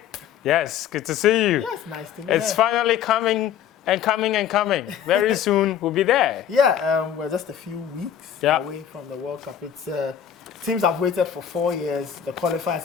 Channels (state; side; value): quieter; right; 9.2 dB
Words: Yes, good to see you. Yes, nice to meet you. It's finally coming and coming and coming. Very soon, we'll be there. Yeah, we're just a few weeks away from the World Cup. It's teams have waited for 4 years. The qualifiers